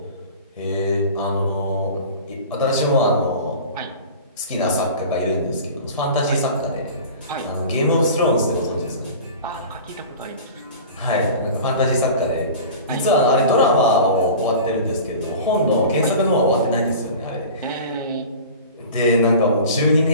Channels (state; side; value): inverted; both; correlation -0.38